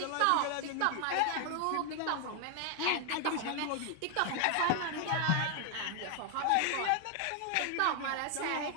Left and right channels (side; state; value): both; different; correlation 0.00